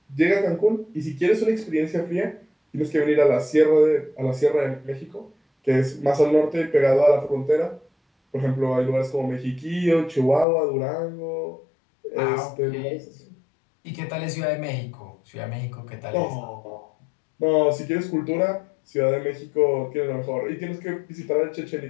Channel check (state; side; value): drops out; right; at 10.5 s